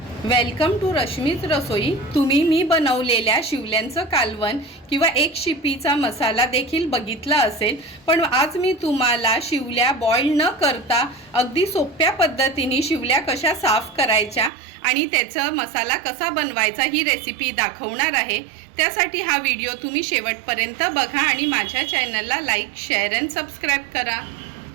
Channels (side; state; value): left; drops out; at 14.5 s